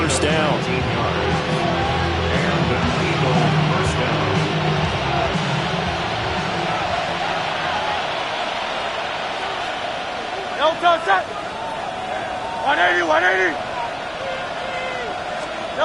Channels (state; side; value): identical; both; correlation 1.00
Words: down. And an Eagle first down. Elton set. 180.